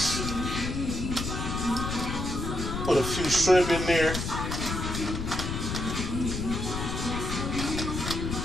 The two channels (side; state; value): left; noise; rumble, 3 dB below the sound